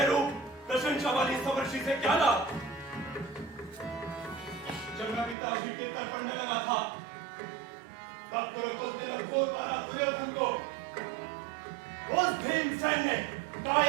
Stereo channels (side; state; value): left; drops out; at 5.4 s